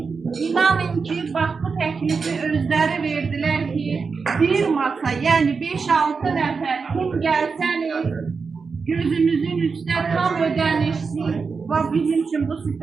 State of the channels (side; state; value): left; quieter; 5.0 dB